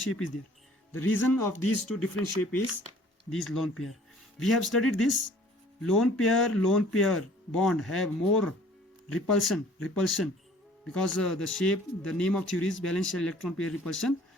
is there? The reason of these two different shape is these lone pair. We have studied this. Lone pair bond have more repulsion because the name of theory is valence shell electron pair repulsion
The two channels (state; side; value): normal; both; correlation 0.53